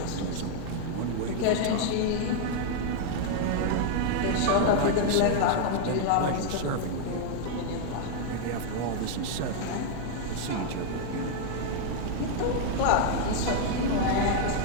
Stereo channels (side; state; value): both; different; correlation 0.00